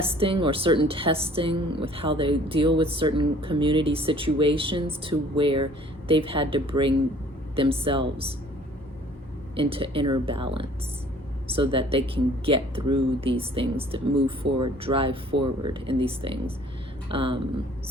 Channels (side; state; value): both; normal; correlation 0.54